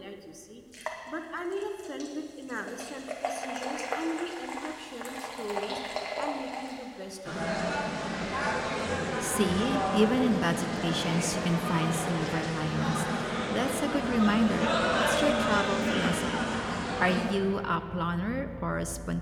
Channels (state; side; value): identical; both; correlation 1.00